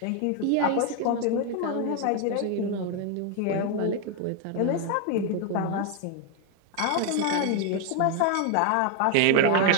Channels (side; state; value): both; different; correlation 0.01